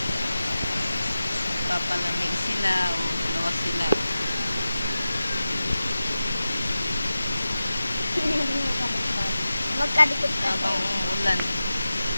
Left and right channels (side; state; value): both; inverted; correlation -0.93